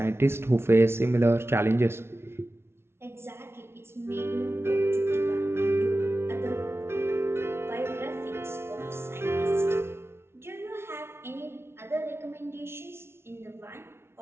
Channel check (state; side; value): late; left; 0.12 ms